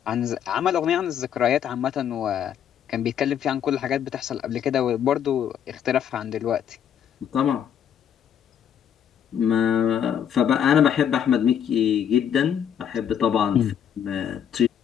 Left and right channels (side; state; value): right; quieter; 9.0 dB